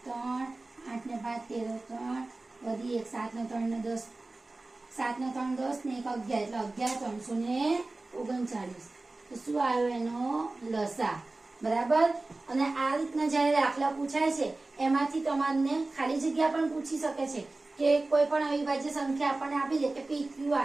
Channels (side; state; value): left; quieter; 3.1 dB